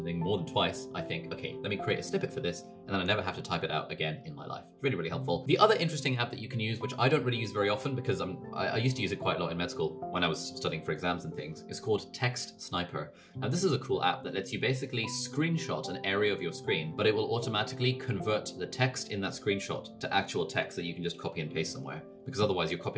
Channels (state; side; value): identical; both; correlation 1.00